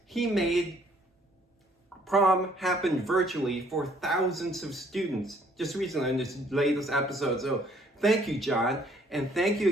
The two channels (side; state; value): both; normal; correlation 0.62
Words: he made prom happen virtually for thousands of students just recently in this latest episode. So thank you, John, and thank you